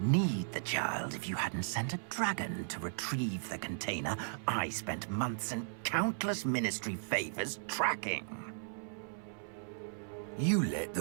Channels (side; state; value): left; silent; 54 dB below the other